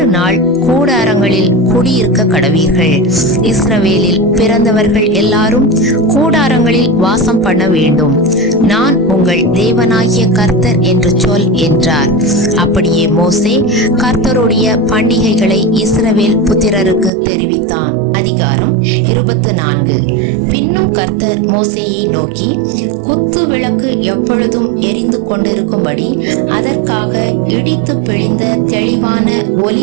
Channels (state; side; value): drops out; left; at 17.1 s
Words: நாள் கூடாரங்களில் குடியிருக்க கடவீர்கள். இஸ்ரவேலில் பிறந்தவர்கள் எல்லாரும் கூடாரங்களில் வாசம் பண்ண வேண்டும். நான் உங்கள் தேவனாகிய கர்த்தர் என்று சொல் என்றார். அப்படியே மோசே கர்த்தருடைய பண்டிகைகளை இஸ்ரவேல் புத்திரருக்கு தெரிவித்தான். அதிகாரம் 24. பின்னும் கர்த்தர் மோசேயை நோக்கி, குத்து விளக்கு எப்பொழுதும் எரிந்து கொண்டிருக்கும்படி அதற்காக இடித்து பிழிந்த தெளிவான